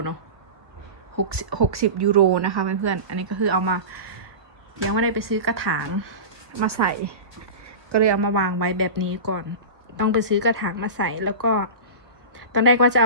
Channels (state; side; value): late; left; 1.5 ms